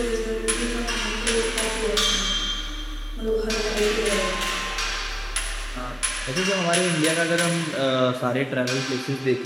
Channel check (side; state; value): both; identical; correlation 1.00